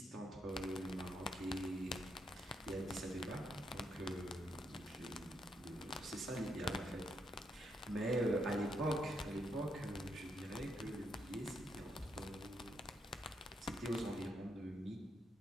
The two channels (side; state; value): both; normal; correlation 0.78